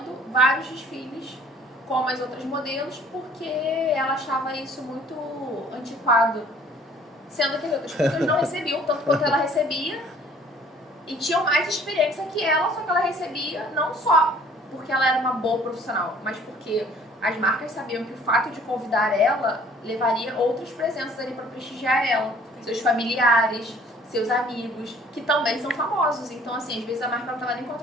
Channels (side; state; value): both; normal; correlation 0.55